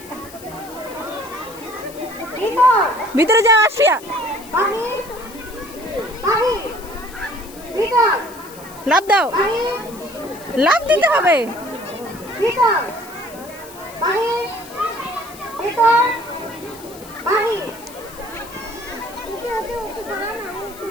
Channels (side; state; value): left; noise; hiss, 18 dB below the sound